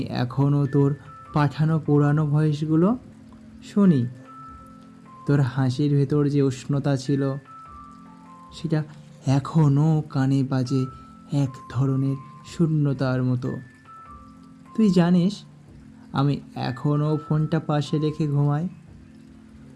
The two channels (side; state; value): both; identical; correlation 1.00